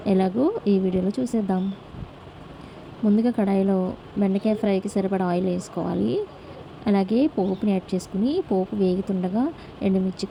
ఎలాగో ఈ వీడియోలో చూసేద్దాం. ముందుగా కడాయిలో బెండకాయ ఫ్రైకి సరిపడా ఆయిల్ వేసుకోవాలి. అలాగే పోపుని యాడ్ చేసుకుని, పోపు వేగుతుండగా ఎండుమిర్చి,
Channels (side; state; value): both; identical; correlation 1.00